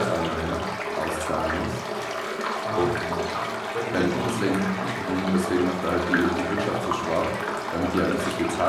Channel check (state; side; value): identical; both; correlation 1.00